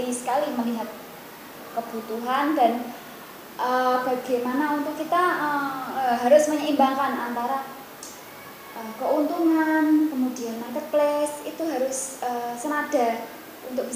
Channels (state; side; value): identical; both; correlation 1.00